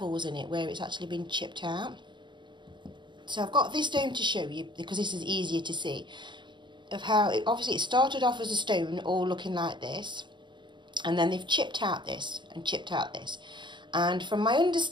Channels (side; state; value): left; late; 0.23 ms